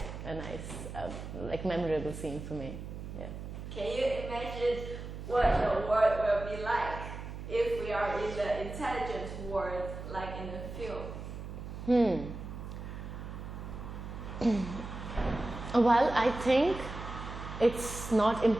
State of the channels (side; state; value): right; noise; hum, 9 dB below the sound